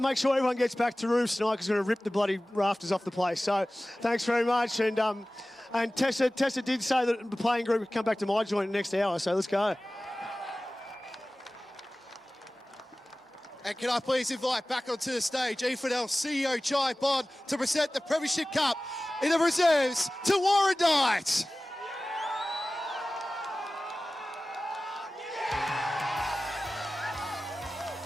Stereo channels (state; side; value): normal; both; correlation 0.97